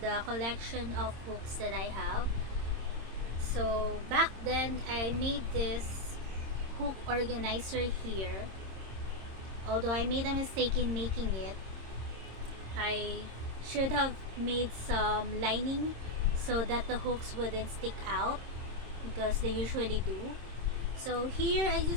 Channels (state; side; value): late; left; 26 ms